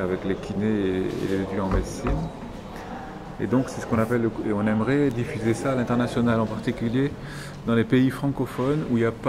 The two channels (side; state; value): both; identical; correlation 1.00